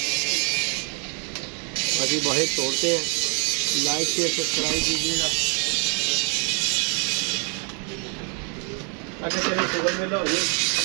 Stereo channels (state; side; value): quieter; left; 38.0 dB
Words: बाकी बाहर छोड़ते हैं, लाइक शेयर सब्सक्राइब कीजिएगा। अगर चले सुबह मेला हो जाए,